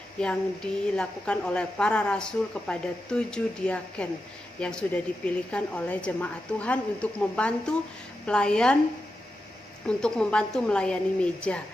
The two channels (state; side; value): normal; both; correlation 0.89